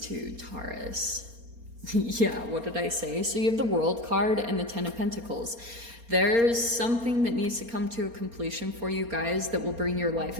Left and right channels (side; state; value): left; late; 4.3 ms